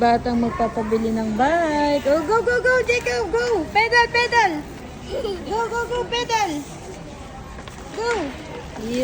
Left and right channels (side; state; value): both; identical; correlation 1.00